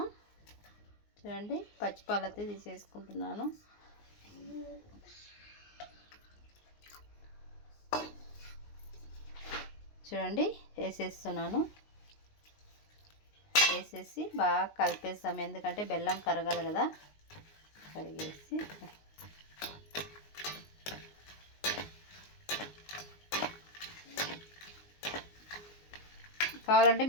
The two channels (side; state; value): right; late; 19 ms